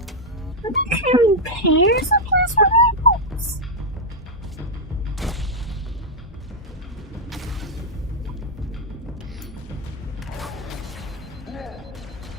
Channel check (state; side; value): normal; both; correlation -0.02